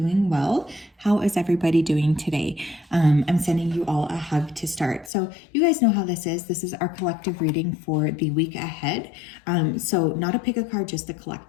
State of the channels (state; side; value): drops out; right; at 5.1 s